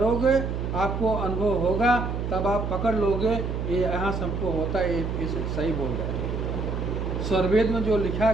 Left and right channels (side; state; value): right; noise; hum, 3 dB below the sound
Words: आपको अनुभव होगा, तब आप पकड़ लोगे ये यहाँ सबको होता है, ये सही बोल रहे हैं। स्वरवेद में जो लिखा